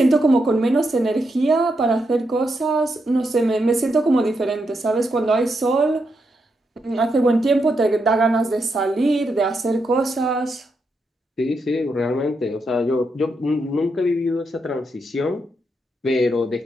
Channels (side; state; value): both; normal; correlation 0.82